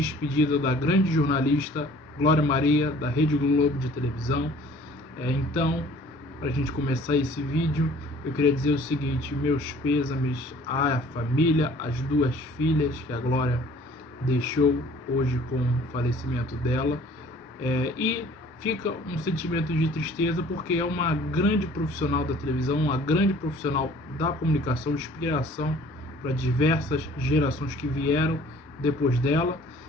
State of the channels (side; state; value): both; normal; correlation 0.52